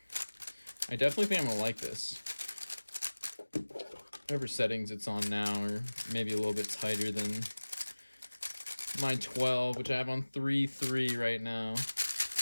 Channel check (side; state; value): both; inverted; correlation -1.00